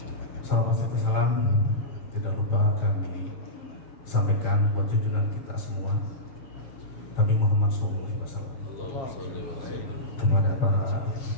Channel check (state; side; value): late; right; 7.4 ms